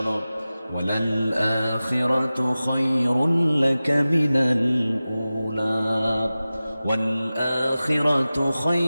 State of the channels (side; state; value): both; inverted; correlation -0.96